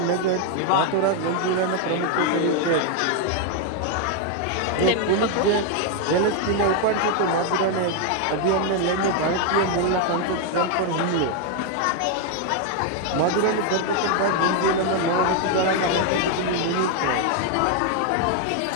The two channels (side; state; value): both; different; correlation 0.01